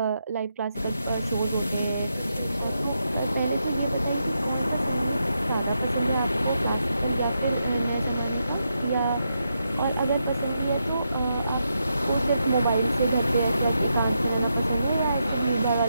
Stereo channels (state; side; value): inverted; both; correlation -0.84